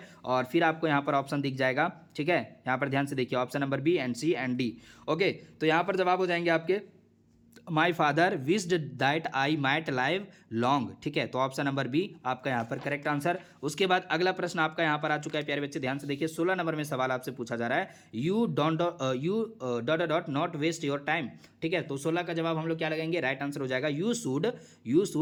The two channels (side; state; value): both; identical; correlation 1.00